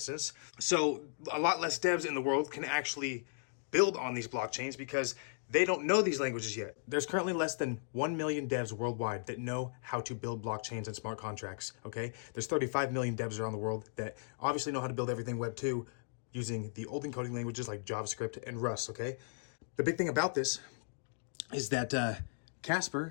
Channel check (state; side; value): silent; right; digital silence